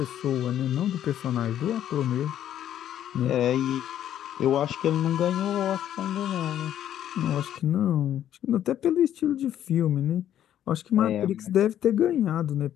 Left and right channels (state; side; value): quieter; right; 11.0 dB